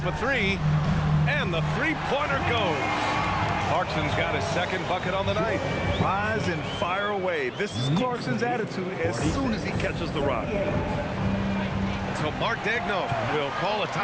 a 3. And the three-pointer goes. Clarkson's got his second bucket on the night. Rise and fire away. This is Clarkson's attitude as soon as he catches the rock. So Mark Daigneault will call a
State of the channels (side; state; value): both; identical; correlation 1.00